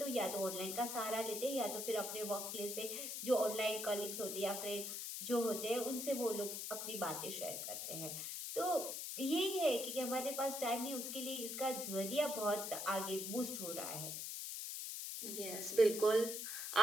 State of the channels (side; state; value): left; noise; hiss, 4 dB below the sound